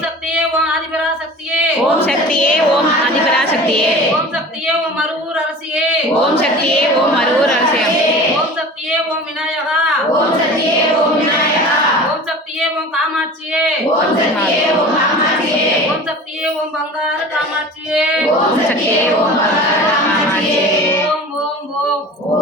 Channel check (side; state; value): both; normal; correlation 0.38